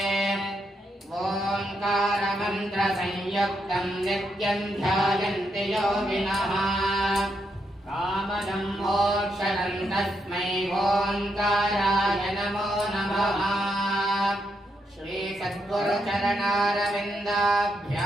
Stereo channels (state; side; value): normal; both; correlation 0.80